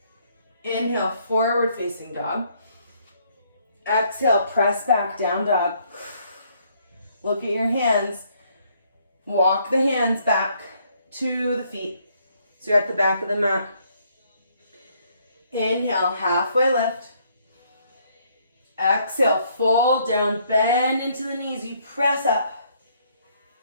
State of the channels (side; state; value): both; inverted; correlation -0.68